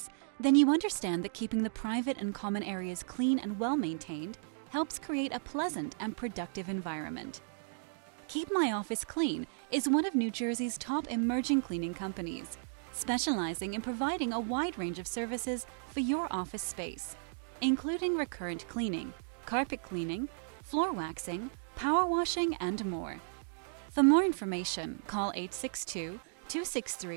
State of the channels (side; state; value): left; silent; digital silence